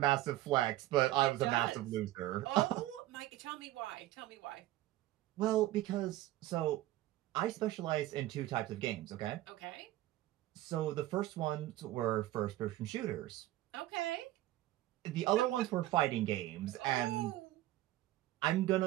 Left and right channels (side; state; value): left; quieter; 15.6 dB